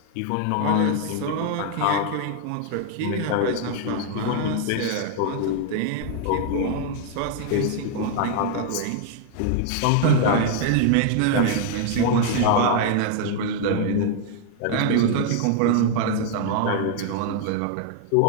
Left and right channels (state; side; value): different; both; correlation 0.00